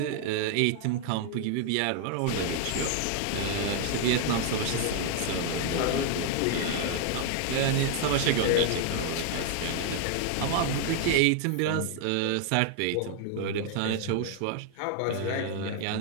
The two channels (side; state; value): both; different; correlation 0.00